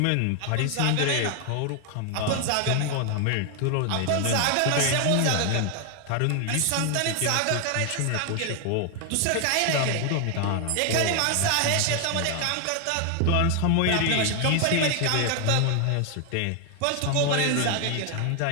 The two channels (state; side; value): different; both; correlation 0.00